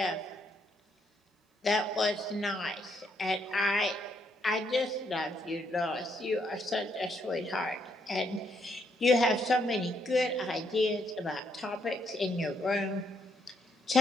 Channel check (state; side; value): normal; both; correlation 0.74